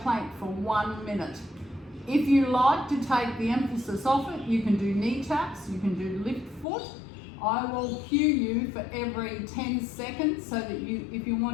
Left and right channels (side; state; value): right; drops out; at 6.7 s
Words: for 1 minute. If you like to take the emphasis off it, you can do knee taps, you can do lift foot. I will cue you for every 10 seconds so that if you